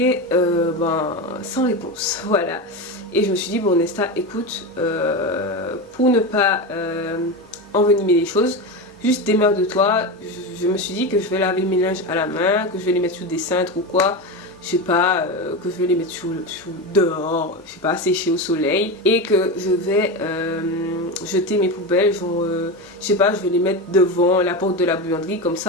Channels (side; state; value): both; normal; correlation 0.19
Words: sans réponse, voilà. Et je me suis dit bon Nesta écoute, pour ne pas envenimer les choses, juste démerde-toi. Je me suis dit que je vais laver mes linges à la main, que je vais les mettre sous des cintres ou quoi. Je sais pas, que je vais les mettre dehors, je sais pas, sécher au soleil. Et que je vais jeter mes poubelles, genre, je sais pas, je vais les mettre devant la porte de la buanderie. Comme